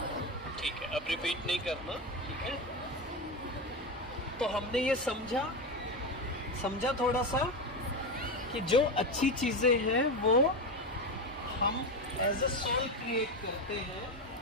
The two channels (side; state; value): both; normal; correlation 0.16